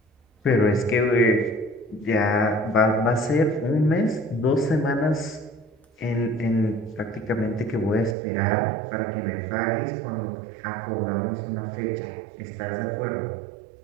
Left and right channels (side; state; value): left; drops out; at 8.2 s